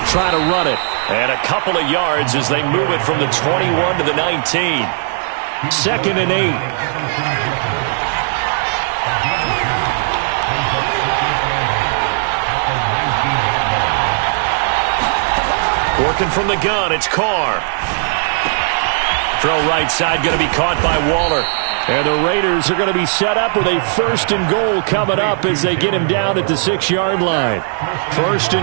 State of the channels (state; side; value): silent; left; digital silence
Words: try to run it. And a couple of yards as they move it from the 21 to the 19. 2nd and 8. Working from the gun, it's Carr. Throw right side going to be caught by Waller. And the Raiders are going to be set up with a 1st and goal coming up as they get him down at the 6-yard line. 1st